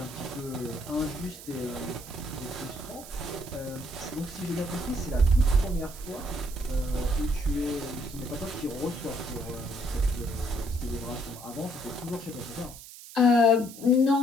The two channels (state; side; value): noise; right; hiss, 15 dB below the sound